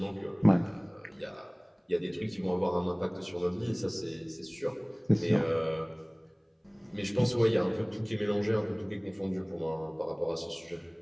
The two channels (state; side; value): identical; both; correlation 1.00